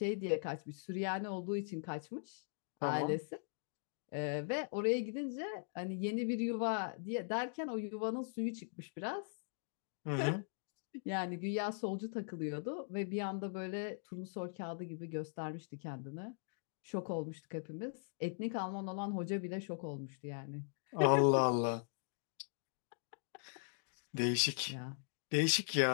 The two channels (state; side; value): silent; right; digital silence